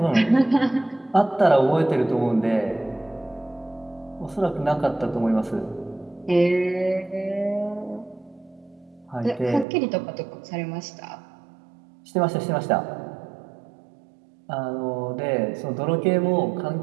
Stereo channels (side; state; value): left; drops out; at 9.7 s